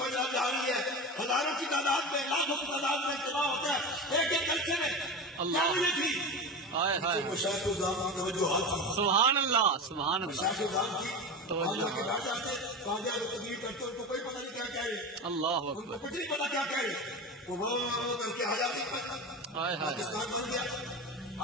جا رہی ہے، ہزاروں کی تعداد میں، لاکھوں کی تعداد میں اجتماع ہوتا ہے ایک ایک جلسے میں۔ اللہ۔ کیا وجہ تھی؟ ہائے ہائے مشاہد الزام کی توجہات تھی، سبحان اللہ سبحان اللہ مشاہد الزام کی توجہ۔ اللہ کے بیٹھ جاتے قاضی اعظم تقریر کرتے ان کو کوئی پتہ نہیں کیا کہہ رہے، اللہ ان کو اکبر کچھ نہیں پتا کیا کہہ رہے، وہ کر کے آزادی پر ہائے ہائے پاکستان بن گیا۔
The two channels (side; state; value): both; normal; correlation 0.26